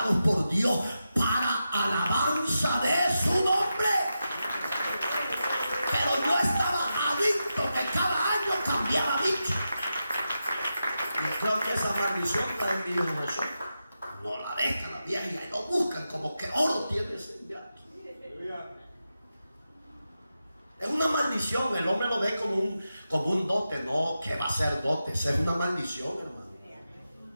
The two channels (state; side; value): inverted; both; correlation -0.89